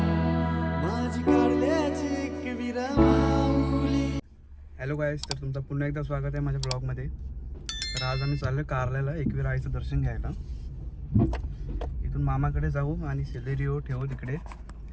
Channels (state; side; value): identical; both; correlation 1.00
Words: माझी काढल्याची एक विरमावली. हॅलो गाईस, तर तुमचं पुन्हा एकदा स्वागत आहे माझ्या ब्लॉगमध्ये. तर आज आम्ही चाललो कारल्याला एकवीर आईचं दर्शन घ्यायला. इथून मामाकडे जाऊ आणि सेलेरिओ ठेवू तिकडे